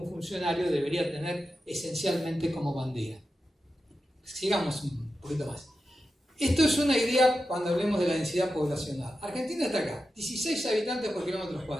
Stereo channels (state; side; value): normal; both; correlation 0.90